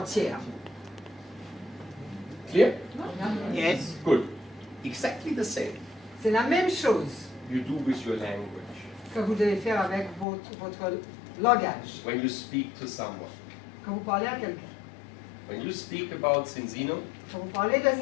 Clear? Yes. Good. Exactly the same C'est la même chose you do with your language. que vous devez faire avec votre langage. When you speak to someone. Quand vous parlez à quelqu'un. When you speak about Zinzino, Quand vous parlez de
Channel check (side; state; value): right; drops out; at 10.2 s